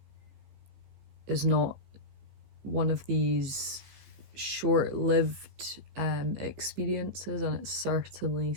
is not one of these short-lived experiences, and it's certainly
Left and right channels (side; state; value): left; late; 15 ms